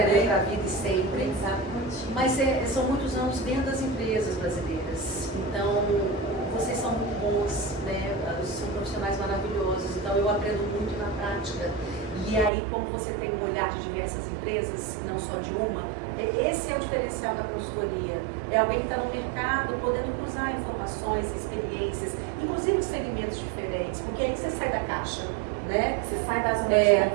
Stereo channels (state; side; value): drops out; left; at 12.5 s